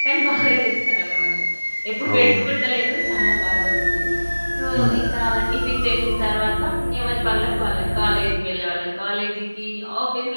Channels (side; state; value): both; inverted; correlation -1.00